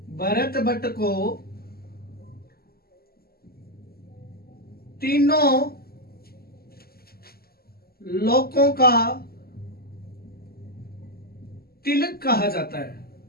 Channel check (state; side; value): late; right; 0.45 ms